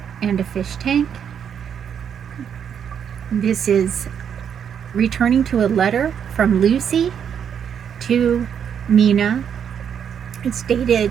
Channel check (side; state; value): left; quieter; 8.1 dB